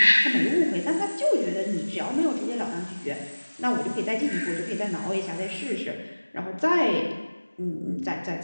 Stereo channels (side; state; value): both; inverted; correlation -1.00